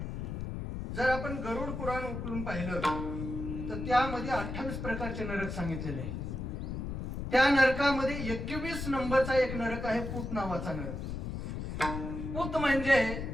जर आपण गरुड पुराण उकलून पाहिलं तर त्यामध्ये 28 प्रकारचे नरक सांगितलेले आहेत. त्या नरकामध्ये 21 नंबरचा एक नरक आहे, पूत नावाचा नरक. पूत म्हणजे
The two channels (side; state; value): left; noise; rumble, 5 dB below the sound